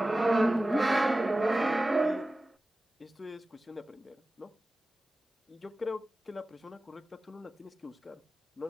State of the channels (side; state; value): both; normal; correlation 0.96